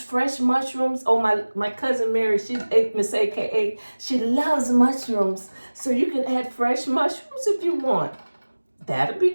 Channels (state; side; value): inverted; both; correlation -1.00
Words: mushrooms, my cousin Mary, she's Miss AKA, she loves mushrooms. So you can add fresh mushrooms if you want.